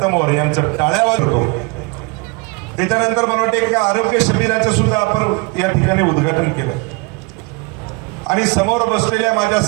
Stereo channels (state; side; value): quieter; left; 28.4 dB